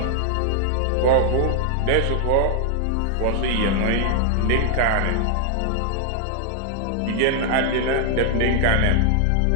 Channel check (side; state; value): both; different; correlation 0.00